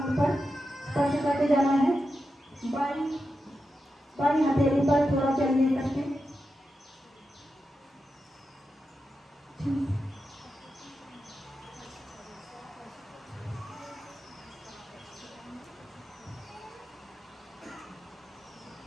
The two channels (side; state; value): both; normal; correlation 0.89